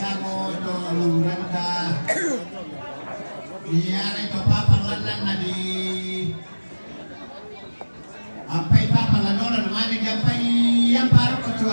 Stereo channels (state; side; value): inverted; both; correlation -1.00